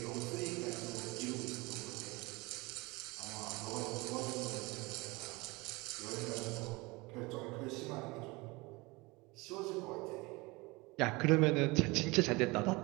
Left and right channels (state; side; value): quieter; left; 24.2 dB